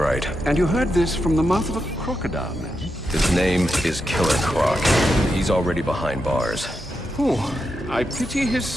And you heard this from the mouth of a crocodile, man? His name is Killer Croc. He's already behind bars. Oh, I pity his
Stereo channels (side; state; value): both; normal; correlation 0.86